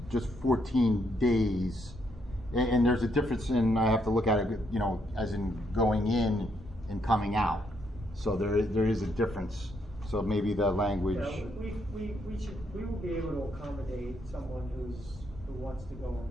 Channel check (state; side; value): normal; both; correlation 0.75